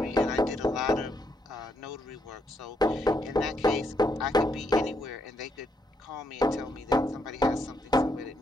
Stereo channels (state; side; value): normal; both; correlation 0.77